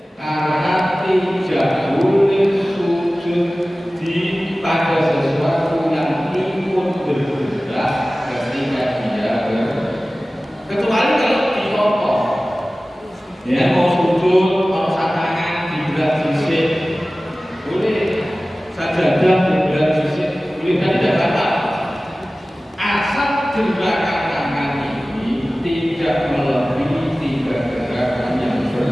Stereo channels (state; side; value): normal; both; correlation 0.97